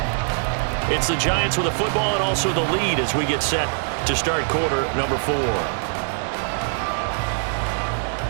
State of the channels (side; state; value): left; silent; digital silence